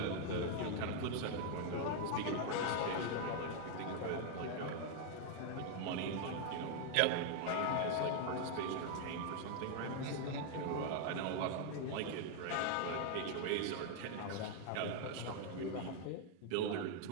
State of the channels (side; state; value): both; different; correlation 0.00